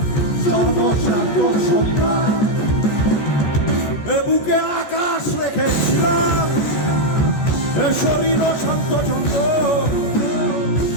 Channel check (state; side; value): late; right; 14 ms